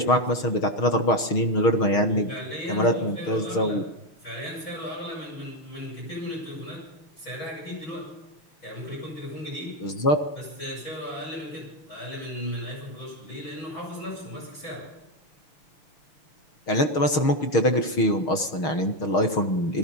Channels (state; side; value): late; right; 6.4 ms